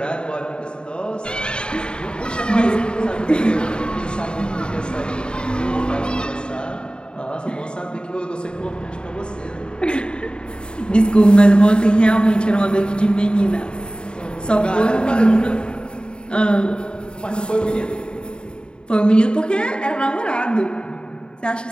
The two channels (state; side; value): late; right; 0.050 ms